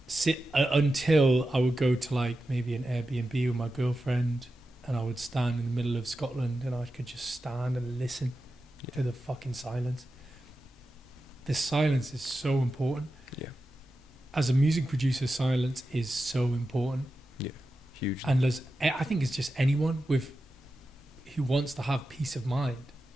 Until I would go to, like, maybe an Airbnb with my girlfriend, and I would stand in the middle of Scotland and I could just stand and listen to the fucking silence. The silence is so important. Yeah. As a music producer, silence is so important. Yeah, huge. And I think it's just anyone who wants to have peace of mind,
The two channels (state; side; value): normal; both; correlation 0.91